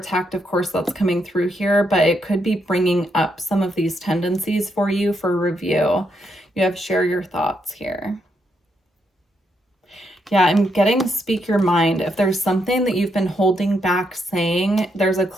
of course, that's coming through here, but it could be bringing up some of these tendencies for you for review. You have share your thoughts here. Yeah, I'm getting speak your mind. If there's something that you've been holding back saying, there's a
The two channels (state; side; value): normal; both; correlation 0.79